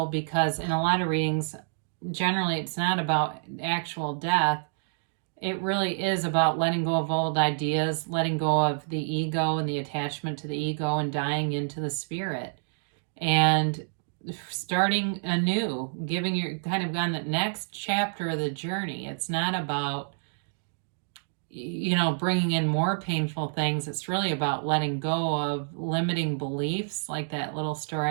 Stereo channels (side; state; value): left; silent; digital silence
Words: because in a lot of readings, generally it's not about actual death. It really is about letting go of old ideas, letting go of the ego and the attachment to the ego and dying into the spirit and starting anew, giving your kind of on the next chapter of the journey. It's not about, you know, bringing in more painful things. It's really about letting go of limiting beliefs, like that little